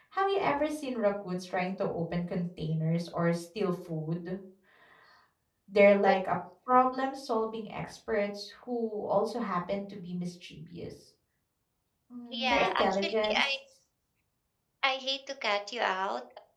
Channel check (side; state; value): both; identical; correlation 1.00